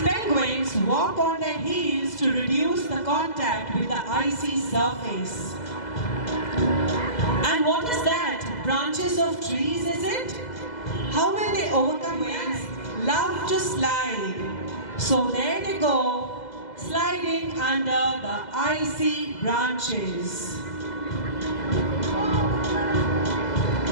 penguins walk on their heels to reduce the contact with the icy surface. And what is that? Branches of trees, is it? How will they overcome winds? Love to slide. So there they go, sliding under the icy branches.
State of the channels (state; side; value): late; right; 2.0 ms